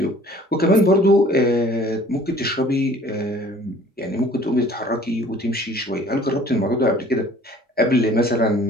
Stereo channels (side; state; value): both; normal; correlation 0.52